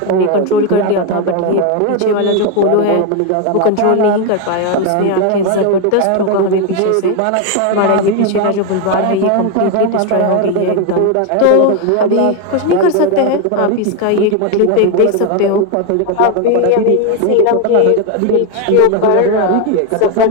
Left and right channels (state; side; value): different; both; correlation 0.01